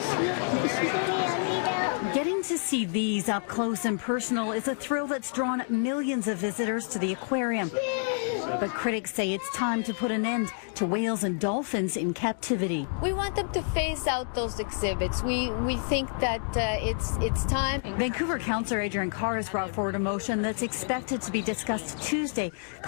Getting to see these up close and personal is a thrill that's drawn millions of visitors to the aquarium. But critics say it's time to put an end to whales and dolphins in captivity. We want them to phase out those exhibits. We think that it's time. Vancouver Councillor Adriane Carr has brought forward a motion that's expected to be discussed Tuesday,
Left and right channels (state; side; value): silent; right; 59 dB below the other